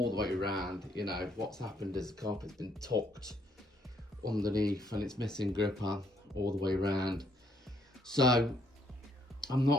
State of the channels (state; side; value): normal; both; correlation 0.69